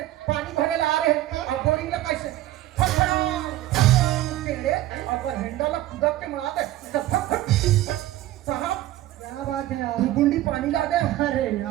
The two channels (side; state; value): left; quieter; 14.9 dB